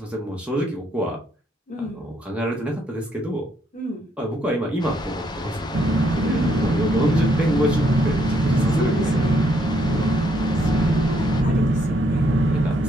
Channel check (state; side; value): normal; both; correlation 0.72